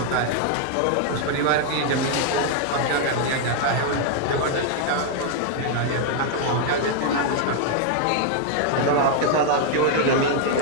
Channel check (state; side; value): different; both; correlation 0.00